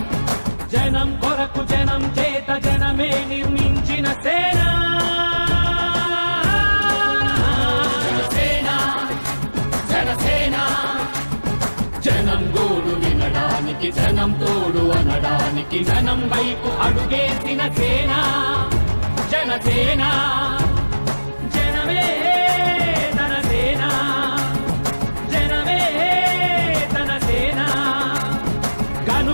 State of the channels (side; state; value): both; inverted; correlation -1.00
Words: జనం కొరకు జనం చేత జనమే నిర్మించిన సేన జనసేన జనసేన జనం గోడు వినడానికి జనం తోడు అనడానికి జనం వైపు అడుగేసిన సేన జనసేన జనమే తన సేన జనమే తన సేన